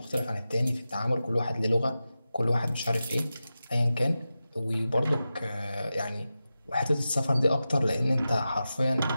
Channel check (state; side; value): inverted; both; correlation -0.93